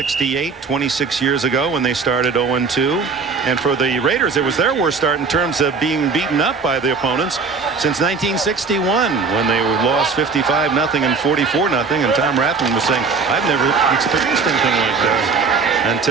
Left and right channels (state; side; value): quieter; left; 4.9 dB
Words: 26 years ago when they started 0-2. And for the Raiders, it was their worst start in terms of being beaten up by the opponents since 1961, when they lost 55-0 and 44-0. And Tom Rathman was saying, I've never experienced anything like this